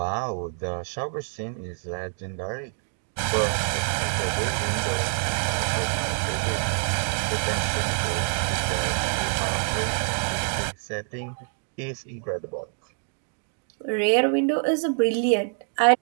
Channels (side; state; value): left; silent; 59 dB below the other